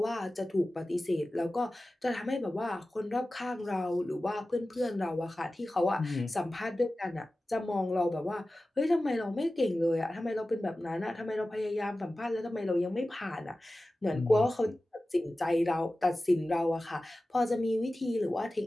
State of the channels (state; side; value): normal; both; correlation 0.95